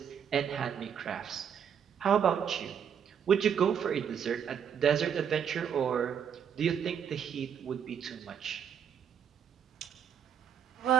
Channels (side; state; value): left; quieter; 8.1 dB